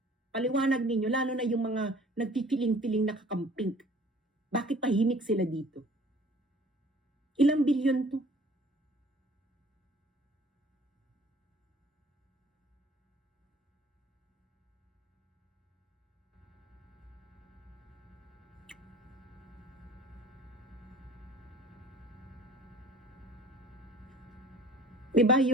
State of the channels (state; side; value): normal; both; correlation 0.50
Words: Paliwanag ninyo, lalo na yung mga nagpipiling-piling nakakamping. Bakit tahimik sila dito? Ilang bilyon to? Diba